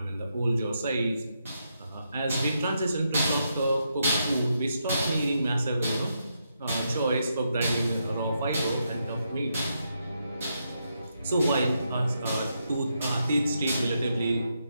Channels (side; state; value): both; inverted; correlation -0.81